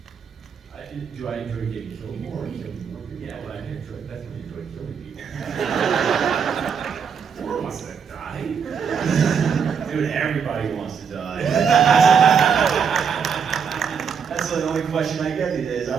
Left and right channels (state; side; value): quieter; left; 6.7 dB